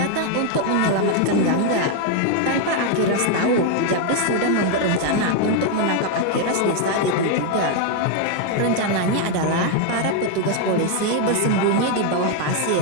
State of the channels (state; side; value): different; both; correlation 0.00